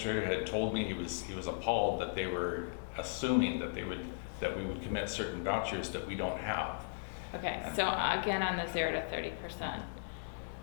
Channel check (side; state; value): right; silent; 53 dB below the other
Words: had told me he was appalled that they were assuming that we would commit certain vouchers that we don't have. Okay, so again, on the 0 to 30%,